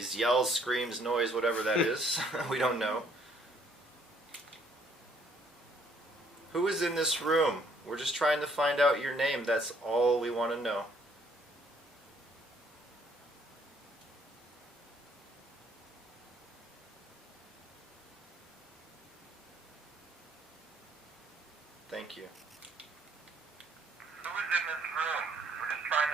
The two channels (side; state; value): both; normal; correlation 0.64